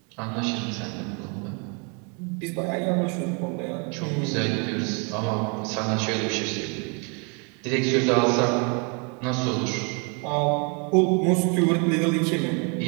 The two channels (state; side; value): quieter; left; 35.1 dB